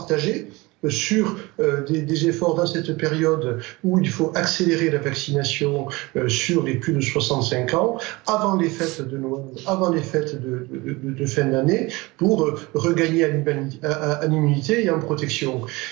sur des efforts dans cette période où il faut accélérer la vaccination sur les plus de 65 ans, avant les fêtes de Noël, avant les fêtes de fin d'année, pour regagner en immunité et en protection.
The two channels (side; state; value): left; quieter; 22.9 dB